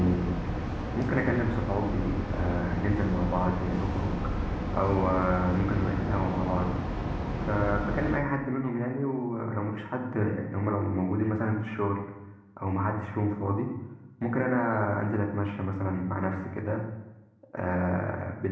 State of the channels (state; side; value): identical; both; correlation 1.00